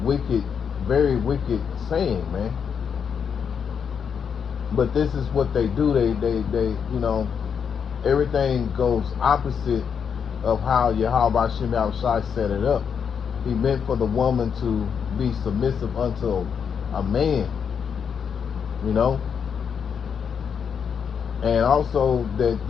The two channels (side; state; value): right; quieter; 7.0 dB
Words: very wicked saying, man. But this is what they do. They everything goes opposite of how Yahweh Shem Yahushai set it up. He meant for the woman to be submissive unto a man, and also that